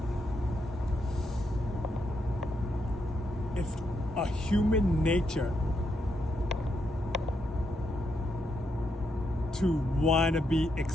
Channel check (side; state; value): both; normal; correlation 0.80